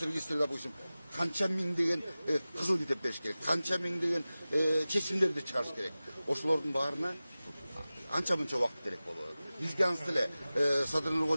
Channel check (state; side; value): inverted; both; correlation -0.97